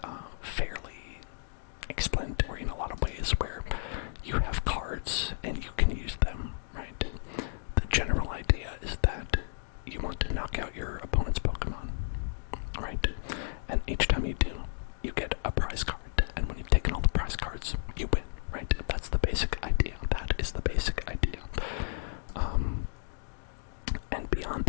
fairly explanatory in a lot of ways where you have cards and you can use them, right? The general idea is that you want to knock out your opponent's Pokemon, right? And each time you do, you get a prize card, and when you've taken all the prize cards, you win, right? That's the basic idea. That is the basic idea. And beyond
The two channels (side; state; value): right; silent; digital silence